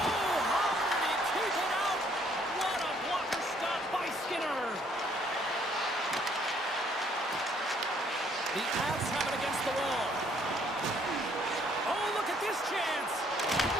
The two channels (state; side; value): normal; both; correlation 0.65